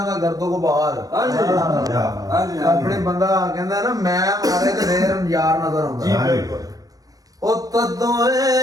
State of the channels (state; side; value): late; left; 0.17 ms